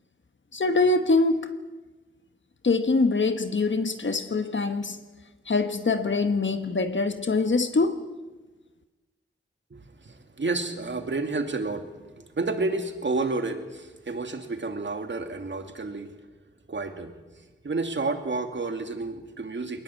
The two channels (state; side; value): normal; both; correlation 0.34